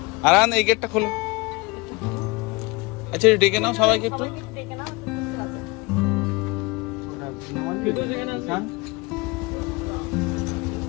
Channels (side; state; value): right; quieter; 25.7 dB